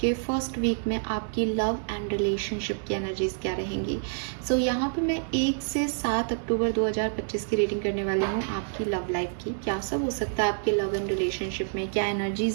के first week में आपकी लव एंड रिलेशनशिप की एनर्जीज क्या रहेंगी। सो यहाँ पे मैं 1 से 7 अक्टूबर 2025 की रीडिंग करने वाली हूँ आपकी लव लाइफ की। क्या सब हो सकता है आपके लव एंड रिलेशनशिप में, क्या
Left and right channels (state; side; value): silent; left; digital silence